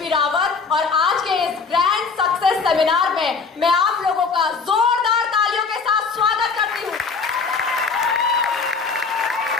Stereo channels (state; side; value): quieter; right; 4.9 dB